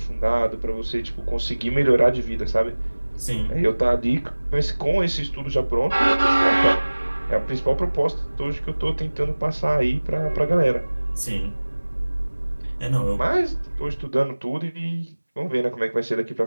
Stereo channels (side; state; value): both; inverted; correlation -1.00